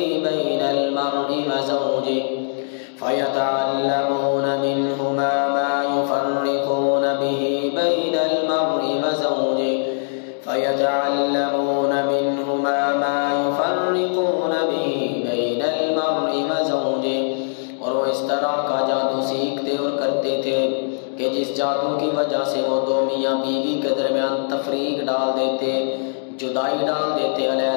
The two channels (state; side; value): silent; right; digital silence